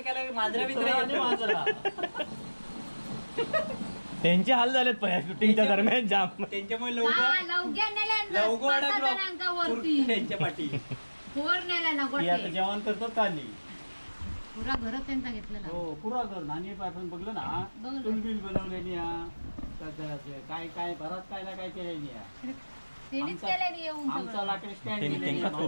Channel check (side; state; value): both; inverted; correlation -1.00